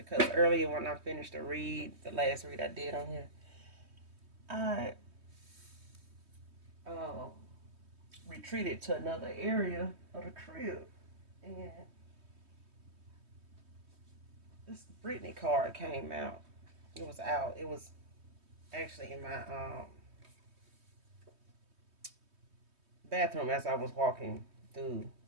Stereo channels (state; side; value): late; left; 3.2 ms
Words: earlier when I finished the read, the last read I did on here, I uh, retreated to another area of the crib. And this Brittany card came out. It was out. It was actually in my bathroom as I was walking through